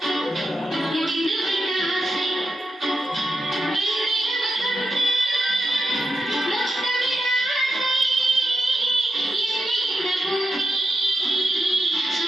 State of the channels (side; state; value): both; normal; correlation 0.88